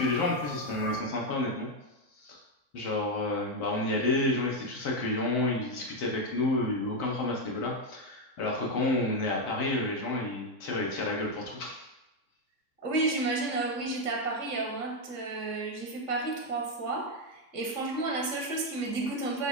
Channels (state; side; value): late; right; 3.6 ms